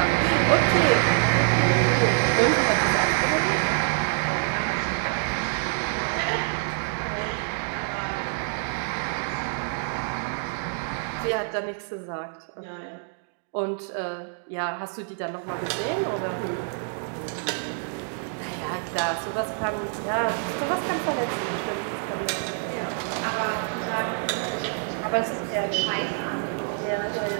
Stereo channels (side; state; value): left; silent; 61 dB below the other